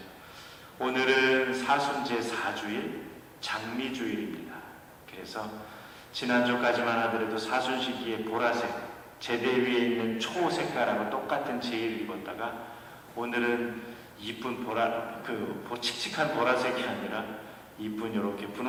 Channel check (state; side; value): identical; both; correlation 1.00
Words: 오늘은 사순제 4주일 장미주일입니다. 그래서 지난주까지만 하더라도 사순 시기에 보라색 제대 위에 있는 초색깔하고 똑같은 제의를 입었다가 오늘은 이쁜 칙칙한 보라색이 아니라 이쁜 이렇게